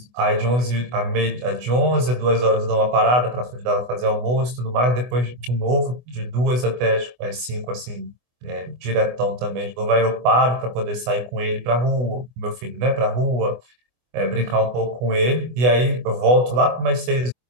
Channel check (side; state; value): left; late; 24 ms